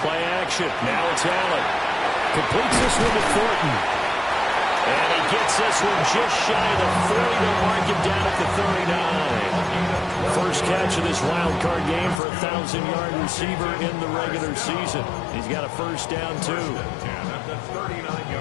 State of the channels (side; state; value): right; drops out; at 12.2 s